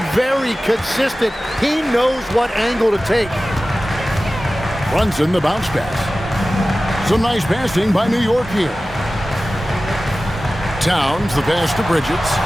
very consistent. He knows what angle to take. Brunson the bounce pass. Some nice passing by New York here. Towns the pass to Bridges.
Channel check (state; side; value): normal; both; correlation 0.96